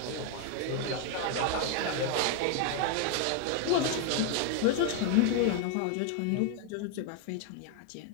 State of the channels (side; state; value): both; different; correlation 0.01